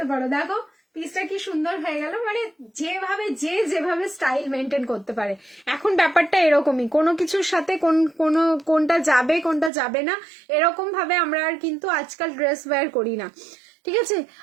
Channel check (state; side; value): drops out; left; at 9.7 s